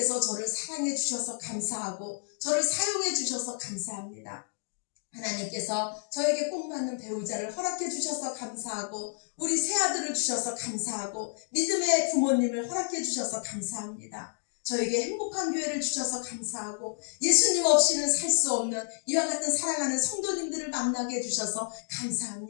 저를 사랑해 주셔서 감사하고 저를 사용해 주셔서 감사합니다. 하나님께서 저에게 꼭 맞는 배우자를 허락해 주셔서 감사하고 우리 새아들을 주셔서 감사하고 믿음의 부모님을 허락해 주셔서 감사합니다. 저에게 행복한 교회를 주셔서 감사하고 예수님 없이는 살 수 없는 이와 같은 사랑하는 성도님들을 만나게 해주셔서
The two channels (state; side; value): silent; right; digital silence